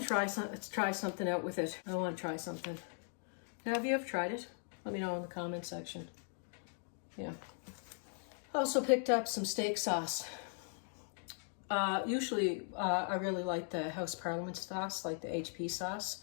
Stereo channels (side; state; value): right; silent; 52 dB below the other